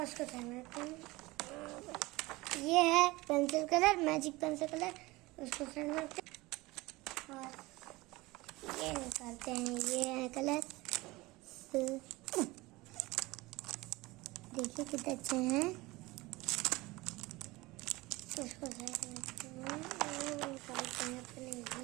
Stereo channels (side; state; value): left; quieter; 21.3 dB